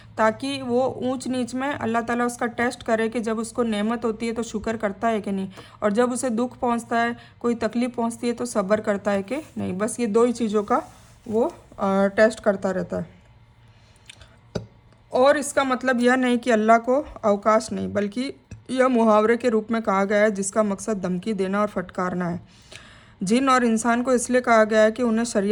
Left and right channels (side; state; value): both; identical; correlation 1.00